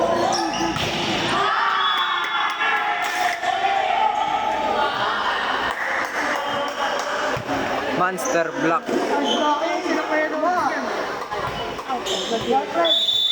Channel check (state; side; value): identical; both; correlation 1.00